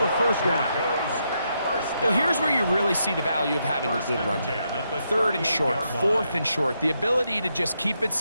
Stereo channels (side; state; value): both; inverted; correlation -0.80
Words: 1st down. Well, here's where you really see the value of having a good run game. 3rd and short, 4th and short. The ability to just keep it